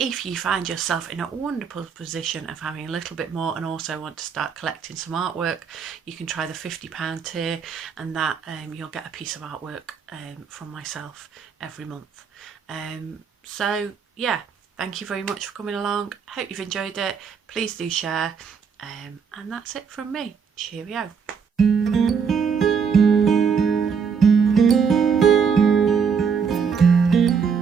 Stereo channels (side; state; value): left; quieter; 6.3 dB